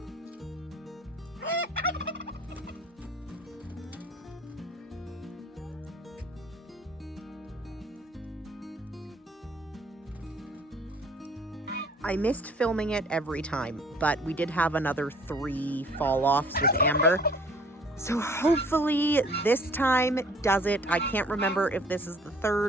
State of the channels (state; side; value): normal; both; correlation 0.54